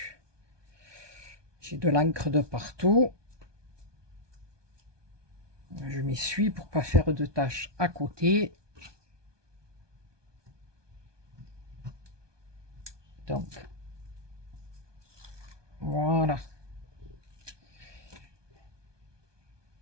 J'ai de l'encre de partout. Je m'essuie pour pas faire de taches à côté. Donc, voilà.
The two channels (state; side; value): late; left; 1.2 ms